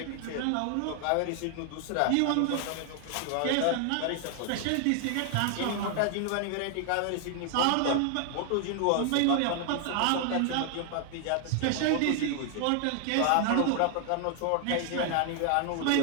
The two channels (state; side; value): different; both; correlation 0.00